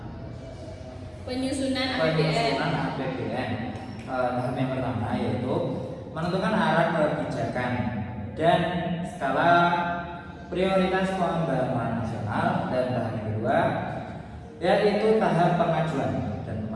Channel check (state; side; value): identical; both; correlation 1.00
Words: Penyusunan APBN. penyusunan APBN. Tahap yang pertama yaitu menentukan arah kebijakan dan skala prioritas pembangunan nasional, dan tahap yang kedua yaitu tahap pengajuan dan